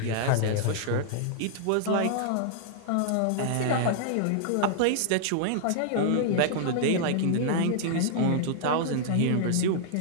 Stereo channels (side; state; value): both; different; correlation -0.01